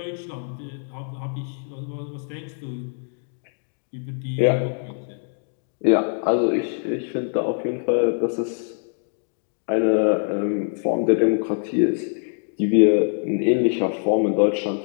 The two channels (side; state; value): right; silent; 63 dB below the other